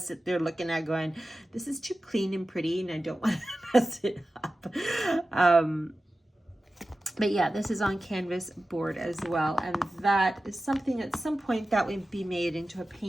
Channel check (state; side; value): normal; both; correlation 0.94